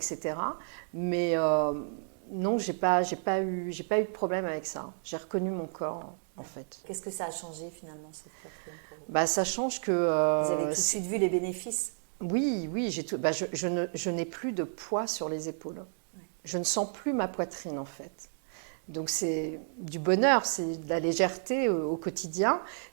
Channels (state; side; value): silent; left; digital silence